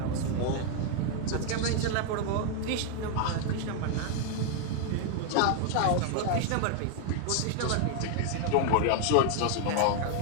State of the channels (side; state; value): both; different; correlation 0.00